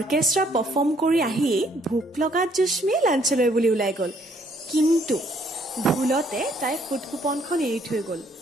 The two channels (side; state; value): both; normal; correlation 0.65